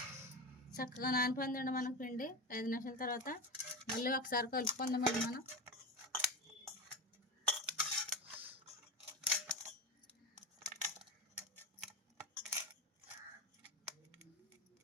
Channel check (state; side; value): normal; both; correlation 0.23